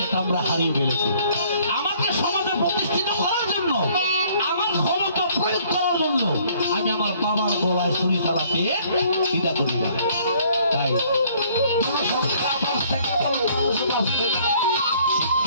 আমরা হারিয়ে ফেলেছি। আমাকে সমাজে প্রতিষ্ঠিত করার জন্য, আমার ক্ষমতা প্রয়োগ করার জন্য আমি আমার বাবার গলায় ছুরি চালাতে দ্বিধা করি না। তাই জনসংখ্যা বাড়ছে কেবল মানুষ বাড়ছে।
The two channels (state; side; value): inverted; both; correlation -0.60